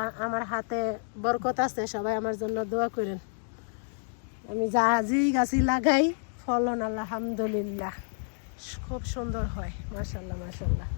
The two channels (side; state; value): right; silent; digital silence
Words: আমার হাতে বরকত আছে, সবাই আমার জন্য দোয়া করেন। আমি যা গাছি লাগাই ফলন আলহামদুলিল্লাহ খুব সুন্দর হয়, মাশাআল্লাহ মাশাআল্লাহ।